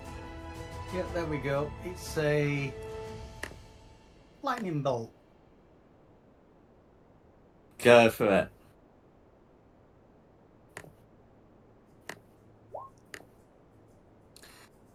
Yeah, there we go. It's a lightning bolt. Go for it.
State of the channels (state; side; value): identical; both; correlation 1.00